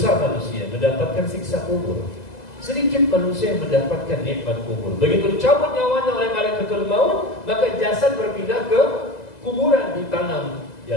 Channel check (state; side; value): late; right; 2.0 ms